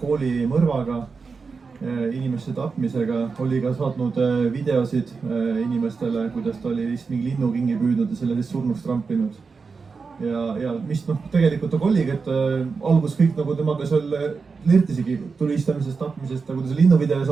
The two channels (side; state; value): left; quieter; 4.9 dB